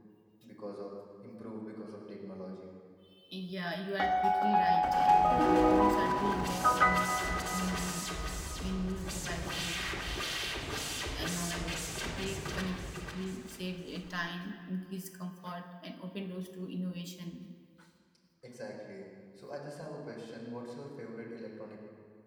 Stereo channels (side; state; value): both; identical; correlation 1.00